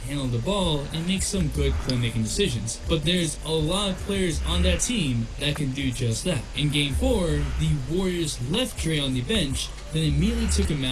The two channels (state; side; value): identical; both; correlation 1.00